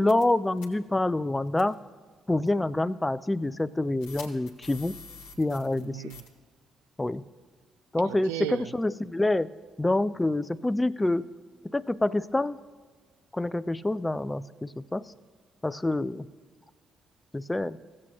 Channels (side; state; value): both; normal; correlation 0.97